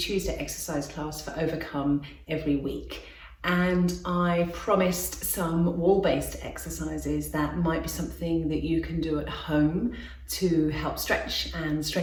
exercise class for Overcome every week. And I promised some wall-based exercises that might be something that you can do at home to help stretch and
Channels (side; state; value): both; identical; correlation 1.00